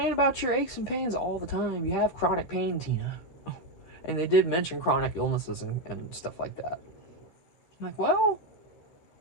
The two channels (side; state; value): right; late; 12 ms